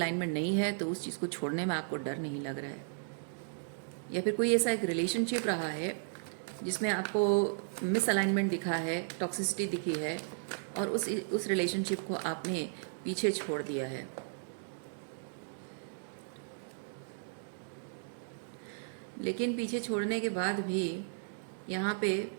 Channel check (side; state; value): left; silent; digital silence